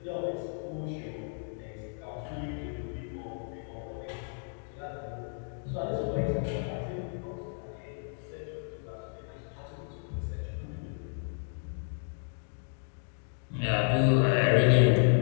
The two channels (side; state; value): right; silent; 56 dB below the other